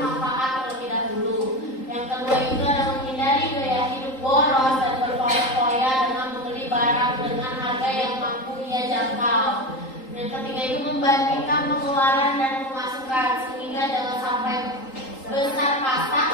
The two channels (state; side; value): late; right; 3.8 ms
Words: terlebih dahulu. Yang kedua itu adalah menghindari gaya hidup boros dan berfoya-foya dengan membeli barang dengan harga yang mampu ia jangkau. Yang ketiga itu membandingkan pengeluaran dan pemasukan sehingga jangan sampai besar pasak